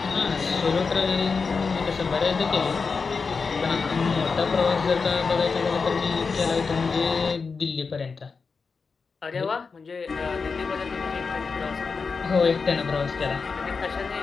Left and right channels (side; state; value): right; quieter; 4.9 dB